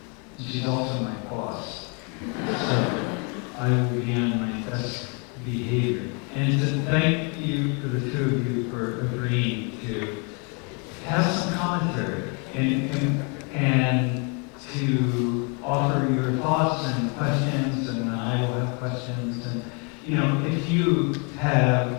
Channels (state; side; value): quieter; right; 34.8 dB